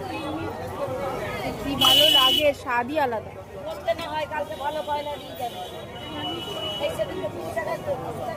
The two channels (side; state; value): both; identical; correlation 1.00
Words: কি ভালো লাগে, স্বাদই আলাদা। বলতে না হয় কালকে ভালো পয়লা দিয়ে যাবে।